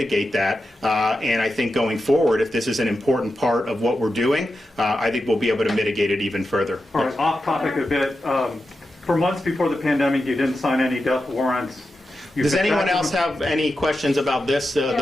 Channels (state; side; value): normal; both; correlation 0.90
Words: that. And I think going forward, if this is an important part of what we're doing, I think we'll be able to mitigate it even further. All right, off topic a bit. For months before the pandemic, you didn't sign any death warrants. Does anyone else have any questions about this,